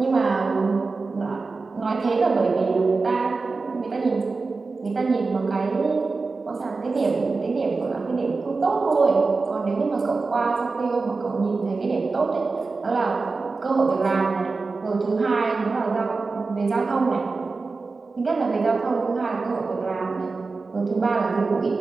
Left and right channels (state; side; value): quieter; left; 4.0 dB